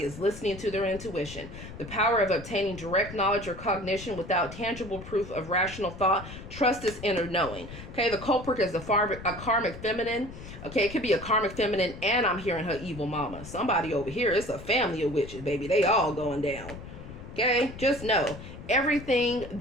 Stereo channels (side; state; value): left; noise; rumble, 13 dB below the sound